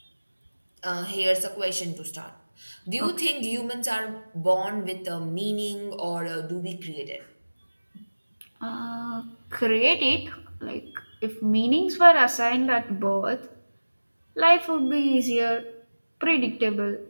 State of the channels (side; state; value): both; inverted; correlation -1.00